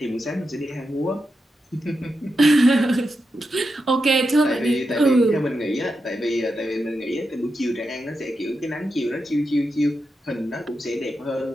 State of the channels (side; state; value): both; normal; correlation 0.87